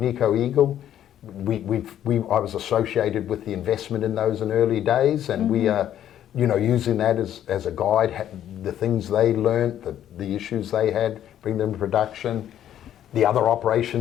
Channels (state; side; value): quieter; right; 11.0 dB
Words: Eagle. I was associated with the investment in those in early days, and we are, using that as a guide, the things they learnt, the issues they had, bring them to production. The other